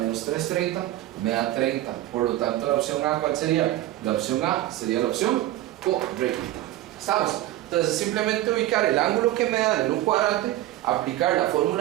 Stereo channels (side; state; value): left; quieter; 14.9 dB